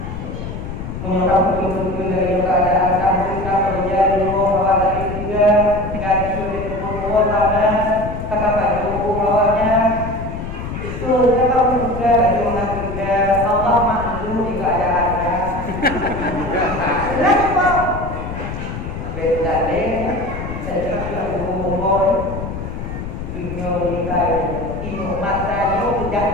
menyokap betul-betul dari keadaan kamu kerja dulu bahwa tadi juga gaji di tempat sana kakak baju bawahnya tuh kamu juga lagi juga Allah maklum di keadaannya. Lagi pak beda deh saya juga ngomong dunia nikah ino mata yo dak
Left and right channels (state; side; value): noise; left; rumble, 7 dB below the sound